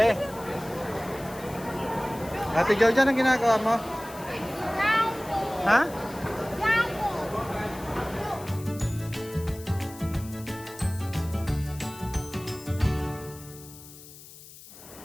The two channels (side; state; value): left; noise; hiss, 18 dB below the sound